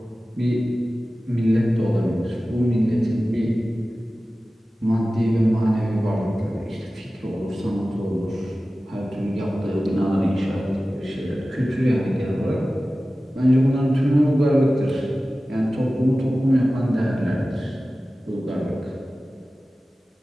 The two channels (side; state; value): both; normal; correlation 0.96